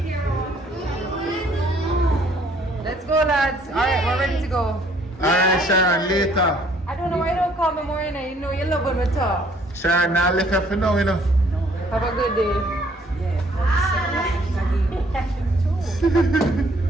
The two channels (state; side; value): normal; both; correlation 0.62